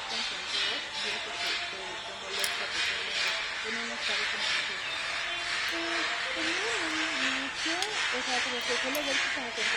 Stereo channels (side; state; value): both; identical; correlation 1.00